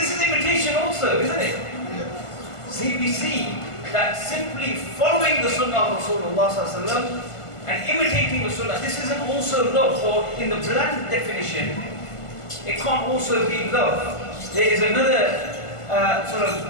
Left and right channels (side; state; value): right; late; 1.5 ms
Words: is imitation also, isn't it? See, we see that simply following the sunnah of Rasulullah and imitating the sunnah, this isn't also love, or in the bland definition, it can't also be love. There is another sort